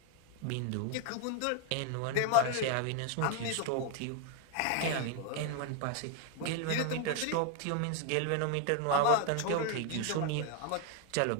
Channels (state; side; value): different; both; correlation 0.00